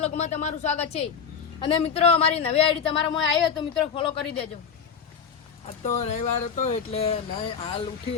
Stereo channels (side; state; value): right; quieter; 6.7 dB